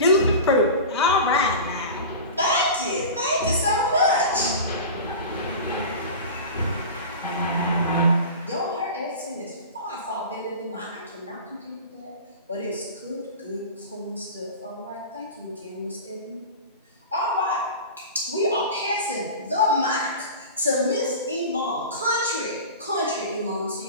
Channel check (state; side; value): inverted; both; correlation -0.32